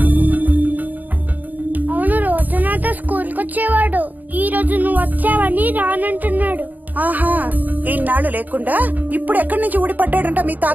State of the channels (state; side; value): late; left; 0.083 ms